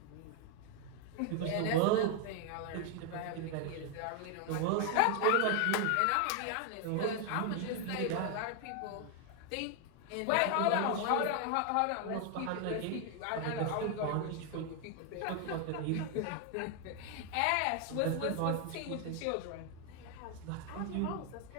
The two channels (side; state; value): both; different; correlation 0.00